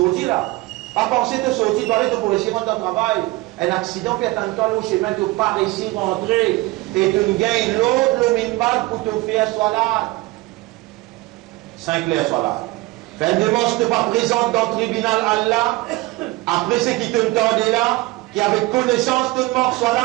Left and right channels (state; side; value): quieter; left; 20.9 dB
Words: là. Pas penser de sortir, tu aller pour réussir dans ton travail. Un accident fait un temps au chemin, tu ne peux pas réussir à rentrer. Et tu gagnes l'autre, le minimum pour te faire salat. 5 clairs soit là. Fais une demande, tu n'es pas présente dans le tribunal Allah. Après ce qui te tendait là, qui avait connaissance de mort soit